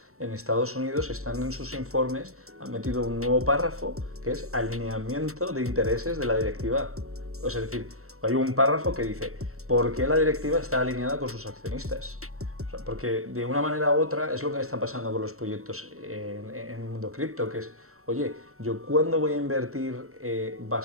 en Estados Unidos están en sus informes, han metido un nuevo párrafo que es alineamiento de intereses de la directiva. O sea, es decir, hay un párrafo que dice ¿por qué la directiva está alineada con sus accionistas? O sea, porque de una manera u otra es lo que está pasando con los proyectos en el mundo cripto, que es, oye, ¿yo cuándo voy a invertir?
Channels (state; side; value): late; left; 0.63 ms